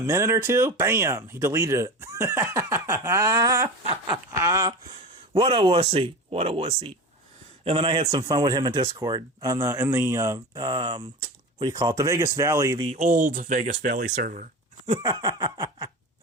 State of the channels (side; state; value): both; normal; correlation 0.28